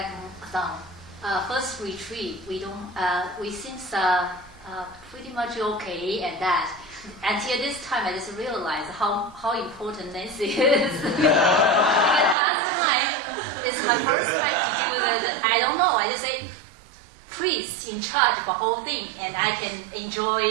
some. First retreat, we seems pretty much okay at that. Until this time, I just realized how important Nancy is. Because last time, it's my first time to do that. I don't know. I just say, priest in charge of the whole thing, and I can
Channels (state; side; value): drops out; left; at 12.4 s